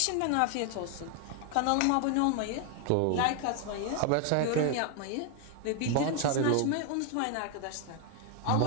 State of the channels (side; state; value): both; different; correlation 0.00